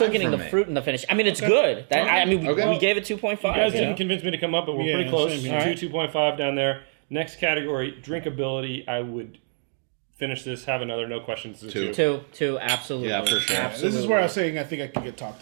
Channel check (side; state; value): left; silent; 62 dB below the other